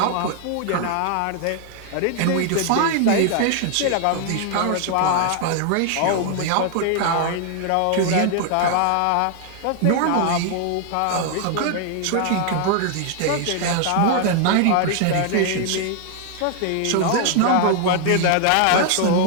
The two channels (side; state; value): both; different; correlation 0.00